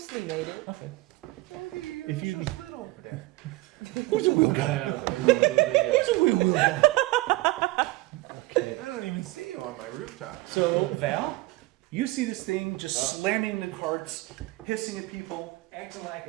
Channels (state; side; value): quieter; left; 20.4 dB